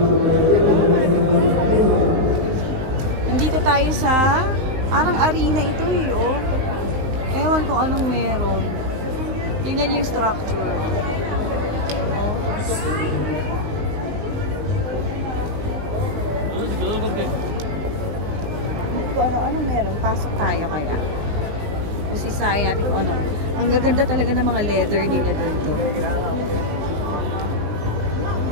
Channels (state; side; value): late; left; 19 ms